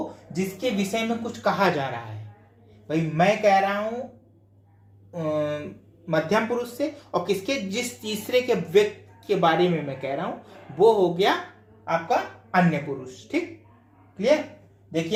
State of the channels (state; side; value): identical; both; correlation 1.00